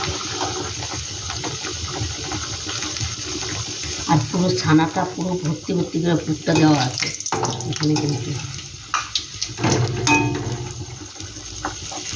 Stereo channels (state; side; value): identical; both; correlation 1.00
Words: আর পুরো ছানাটা পুরো ভর্তি ভর্তি করে পুরটা দেওয়া আছে এখানে কিন্তু।